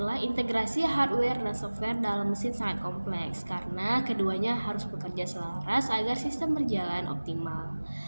integrasi hardware dan software dalam mesin sangat kompleks karena keduanya harus bekerja selaras agar sistem berjalan optimal.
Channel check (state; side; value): inverted; both; correlation -1.00